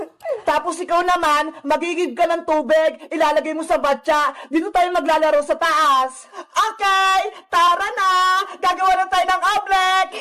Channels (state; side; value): identical; both; correlation 1.00